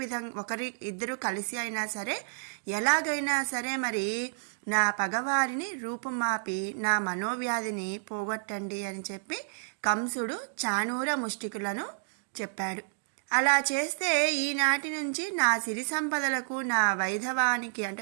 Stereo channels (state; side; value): silent; left; digital silence